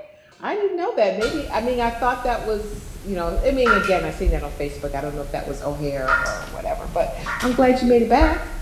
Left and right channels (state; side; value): identical; both; correlation 1.00